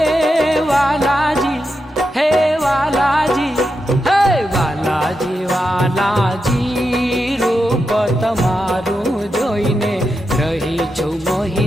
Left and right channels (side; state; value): both; normal; correlation 0.87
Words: વાલાજી, હે વાલાજી, હે વાલાજી વાલાજી, રૂપ તમારું જોઈને રહી છું